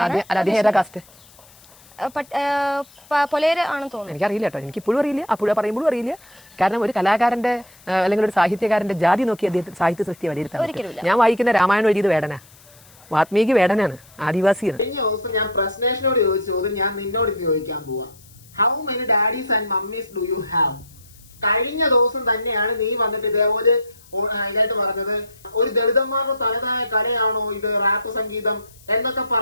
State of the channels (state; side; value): noise; left; hiss, 25 dB below the sound